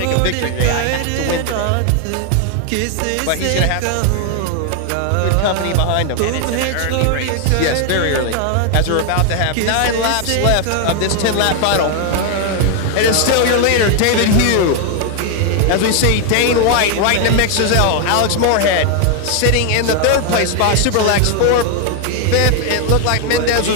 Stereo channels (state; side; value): different; both; correlation 0.00